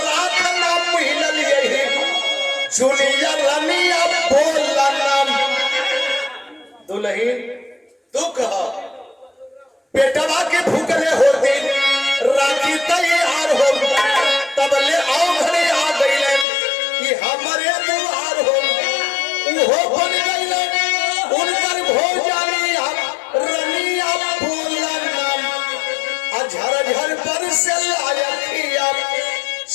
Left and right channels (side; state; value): right; drops out; at 16.4 s